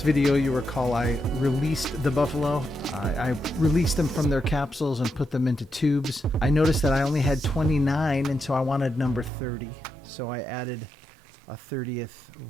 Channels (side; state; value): left; drops out; at 9.3 s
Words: video, you recall I released the buffalo. I released them from their capsules and put them into tubes. I noticed that I only had 29, and so I wanted number 30. So I added a 30th